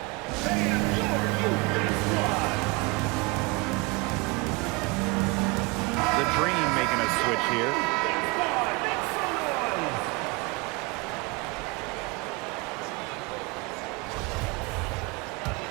The Dream making a switch here.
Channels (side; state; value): left; quieter; 26.5 dB